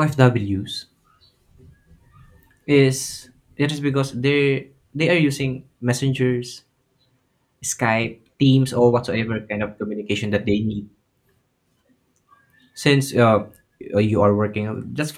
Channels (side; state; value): both; identical; correlation 1.00